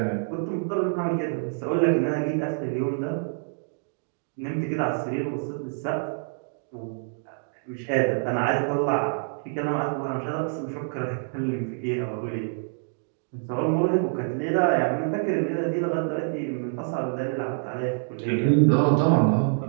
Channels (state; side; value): silent; left; digital silence